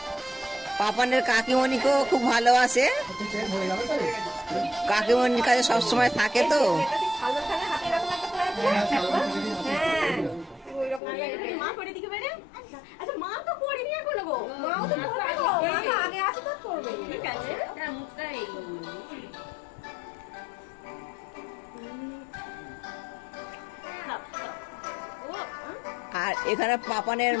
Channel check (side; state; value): right; drops out; at 11.0 s